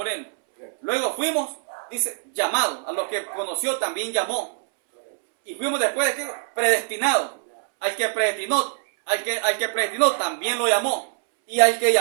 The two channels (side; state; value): left; silent; 63 dB below the other